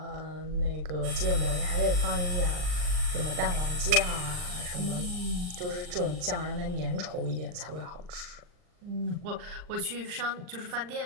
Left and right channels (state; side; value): late; left; 39 ms